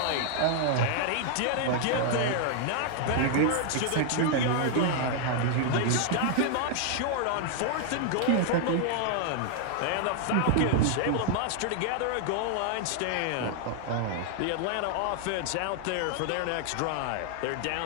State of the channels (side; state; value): both; different; correlation 0.00